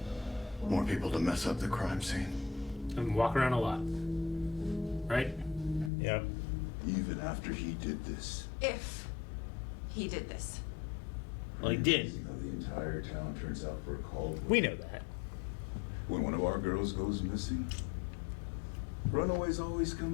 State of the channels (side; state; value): right; drops out; at 5.9 s